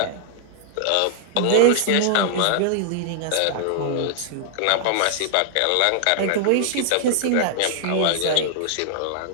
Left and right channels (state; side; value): different; both; correlation -0.01